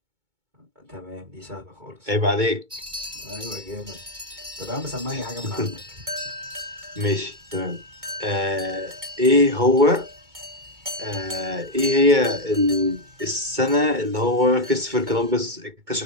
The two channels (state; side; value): late; left; 2.2 ms